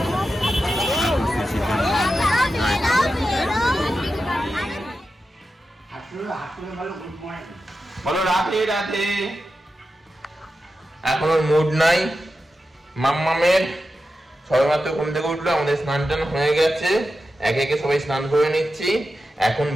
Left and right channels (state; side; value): normal; both; correlation 0.91